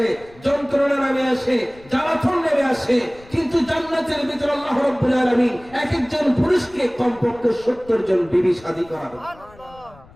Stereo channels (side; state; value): left; noise; rumble, 24 dB below the sound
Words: যন্ত্রণা নেমে আসে, জ্বালাতন নেমে আসে। কিন্তু জান্নাতের ভিতরে আল্লাহ রাব্বুল আলামিন এক একজন পুরুষকে কমপক্ষে 70 জন বিবি শাদী করাবে।